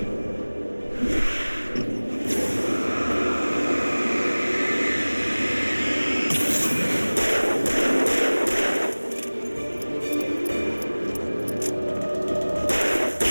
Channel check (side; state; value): both; inverted; correlation -1.00